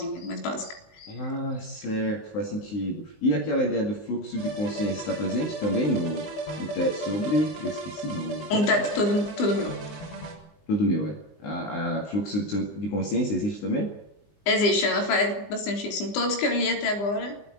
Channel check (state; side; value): late; right; 20 ms